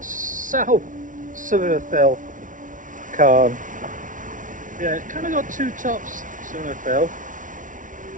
south Sca Fell cairn. Yeah, it's kind of got two tops, Sca Fell.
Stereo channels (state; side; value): late; left; 0.38 ms